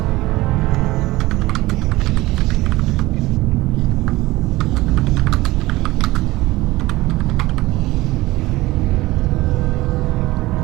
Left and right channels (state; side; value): quieter; left; 19.0 dB